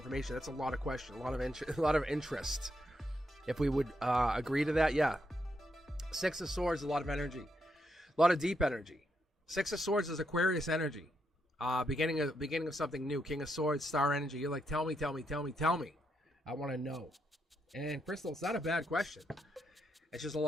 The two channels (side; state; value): both; normal; correlation 0.80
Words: That's a lot of question, a lot of interest. If we would agree to that, yeah. Six of Swords, a lot of energy, a lot of deep energy. Six of Swords is Aquarius energy. Beginning of something new. King of Swords, star energy. You're like, tell me. I want to know. And Crystal, it's not a bad question. It's just a